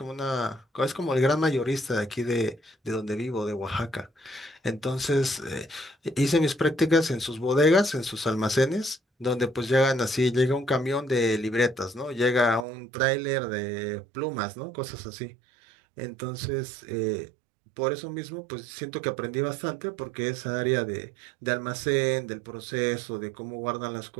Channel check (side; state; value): left; drops out; at 12.7 s